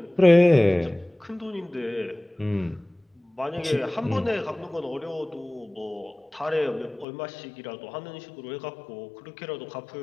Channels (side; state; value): right; drops out; at 7.1 s